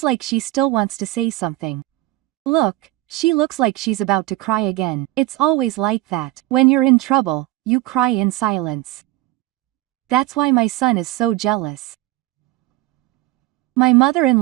like she still wants to say something. Look, she looks like she's about to cry again. It's always like that. When you're in trouble, you cry in silence. That's why my son is so jealous. My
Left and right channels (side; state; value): left; quieter; 17.5 dB